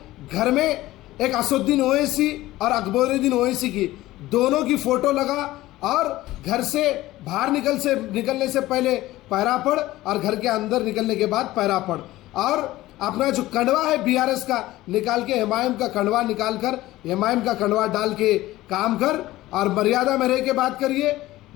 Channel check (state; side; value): quieter; right; 16.8 dB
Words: घर में एक असुद्दीन ओवैसी और अकबरुद्दीन ओवैसी की दोनों की फोटो लगा और घर से बाहर निकलने से पहले पैरा पड़ और घर के अंदर निकलने के बाद पैरा पड़, और अपना जो कंडवा है बीआरएस का निकाल के एमआईएम का कंडवा निकाल कर एमआईएम का कंडवा डाल के काम कर और मर्यादा में रह के बात करिए।